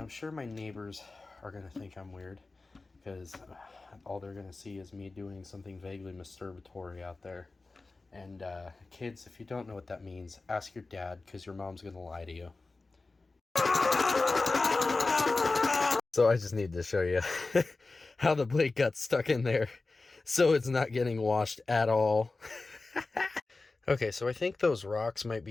sure my neighbors are going to think I'm weird, because all they're going to see is me doing something vaguely masturbatory out there. And kids, if you don't know what that means, ask your dad, because your mom's going to lie to you. So I just need to show you how the blade got stuck in there, so it's not getting washed at all. Okay, so I think those rocks might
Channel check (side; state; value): right; quieter; 3.5 dB